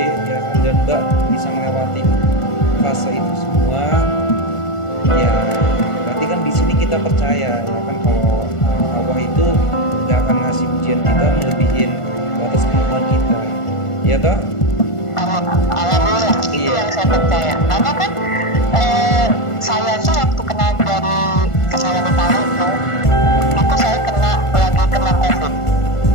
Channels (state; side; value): late; right; 1.5 ms